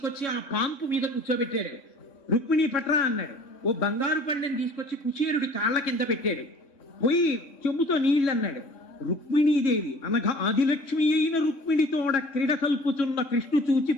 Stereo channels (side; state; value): right; late; 3.1 ms